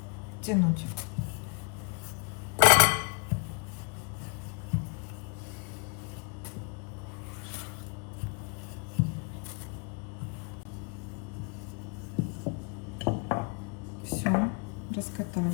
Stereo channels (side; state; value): right; quieter; 34.2 dB